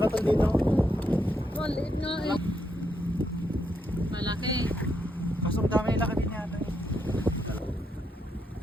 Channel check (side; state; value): both; normal; correlation 0.79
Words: dito. Maliit nga eh. Malaki. Kasong dami laki din yata.